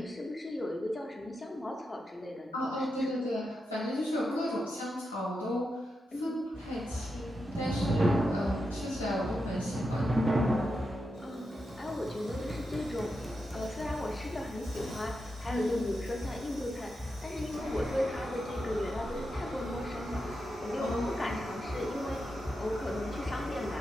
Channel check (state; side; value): normal; both; correlation 0.87